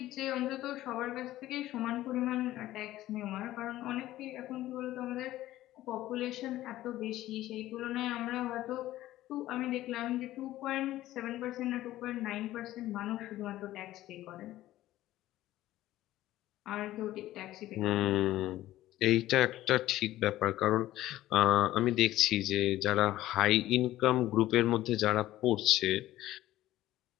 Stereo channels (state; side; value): quieter; right; 14.9 dB